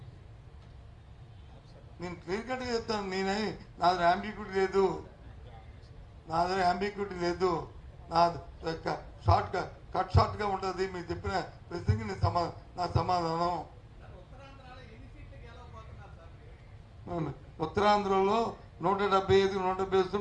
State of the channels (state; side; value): identical; both; correlation 1.00